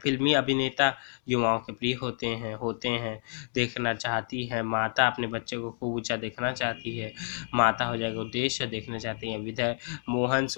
अभिनेता युवाओं के प्रिय होते हैं देखना चाहती है। माता अपने बच्चे को खूब ऊंचा देखना चाहती है। माता हो जाएगा उद्देश्य, देखना चाहती है विधेय। मोहन,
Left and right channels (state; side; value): silent; right; 58 dB below the other